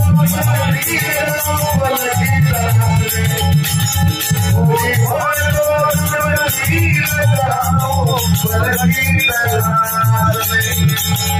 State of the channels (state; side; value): identical; both; correlation 1.00